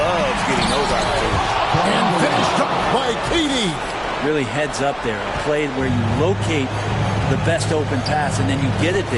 getting those opportunities. And finished up by KD. Really heads up there. A play where you locate the best open pass and then you get it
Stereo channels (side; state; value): both; identical; correlation 1.00